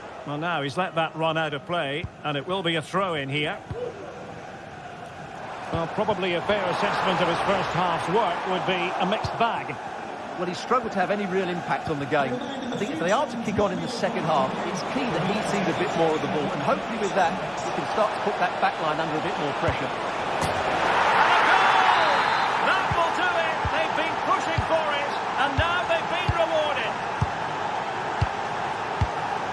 Well, now he's let that run out of play, and it will be a throw-in here. Well, probably a fair assessment of his first half's work would be a mixed bag. Well, he struggled to have any real impact on the game. I think if they are to kick on in the second half, it's key that he sees a bit more of the ball. And hopefully with that, he can start to put that back line under a bit more pressure. And a goal! That will do it! They've been pushing for it, and now they've been rewarded.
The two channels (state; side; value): identical; both; correlation 1.00